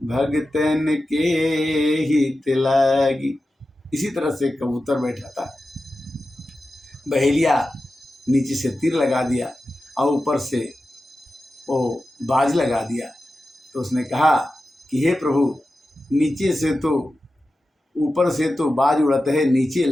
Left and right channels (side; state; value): both; normal; correlation 0.93